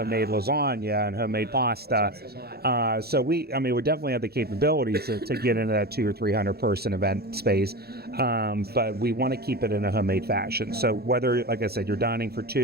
lasagna and homemade pasta. So we definitely have the capabilities to get into that 200 or 300 person event space, but we want to keep it in a homemade fashion. So whether, like I said, you're dining for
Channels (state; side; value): late; left; 0.46 ms